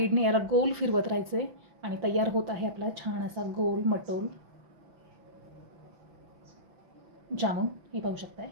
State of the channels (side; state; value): left; late; 6.0 ms